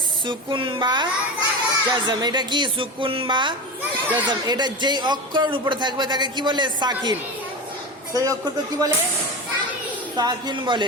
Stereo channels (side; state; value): both; normal; correlation 0.24